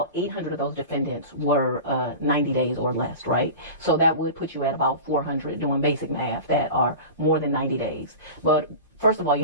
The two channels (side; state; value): both; inverted; correlation -0.33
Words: 800 of those defendants were 90 days or less, right? So that would put you at about 400 doing basic math that are more than 90 days. But first of all, you